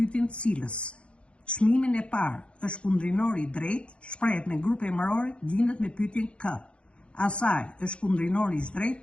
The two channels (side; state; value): right; late; 0.059 ms